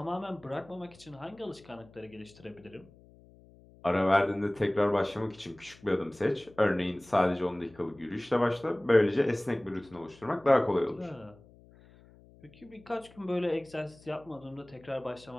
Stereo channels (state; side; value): noise; left; hum, 25 dB below the sound